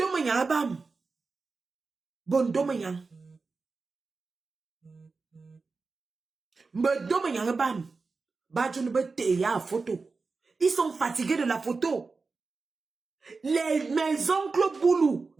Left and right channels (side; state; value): left; quieter; 4.2 dB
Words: abam. Bondomayan. Bondomayan abam. Badjounbeteya photo. Ils sont fatigués de la photo. Mes oncles Boulou